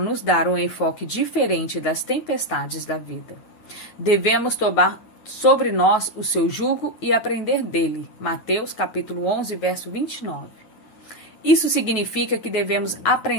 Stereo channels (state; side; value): late; right; 9.6 ms